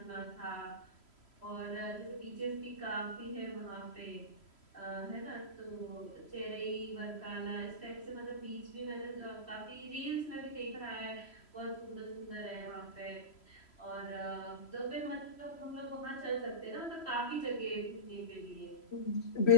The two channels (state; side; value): late; right; 3.0 ms